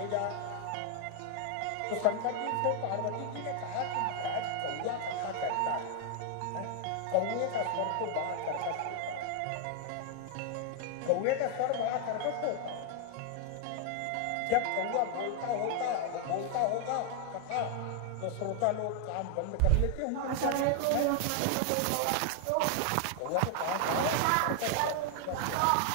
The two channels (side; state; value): both; different; correlation 0.00